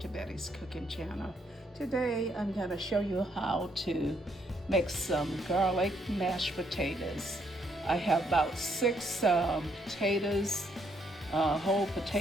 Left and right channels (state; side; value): normal; both; correlation 0.72